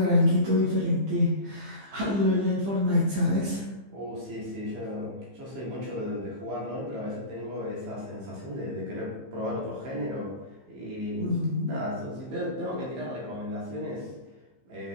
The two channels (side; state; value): left; late; 15 ms